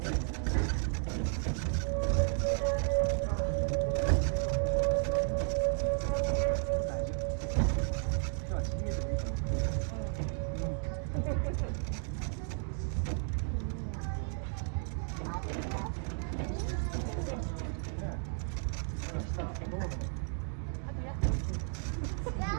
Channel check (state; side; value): silent; left; 55 dB below the other